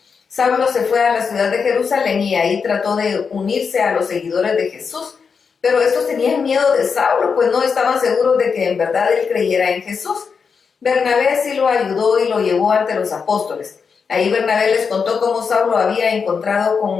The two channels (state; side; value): quieter; right; 5.8 dB